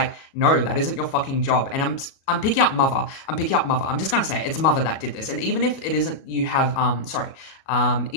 no, that isn't your fucking job. And I'm picking up mother. I'm just gonna say it's mother that did this. And even if it isn't, you have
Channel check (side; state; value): right; late; 37 ms